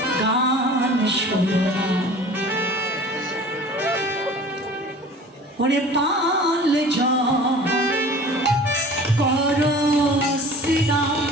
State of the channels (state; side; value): normal; both; correlation 0.43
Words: গান শোনো না ওরে পাল যা করো শ্রীরাম